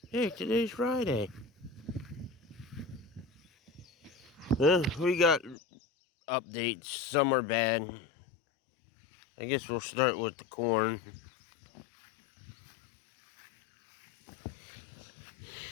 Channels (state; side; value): drops out; right; at 5.6 s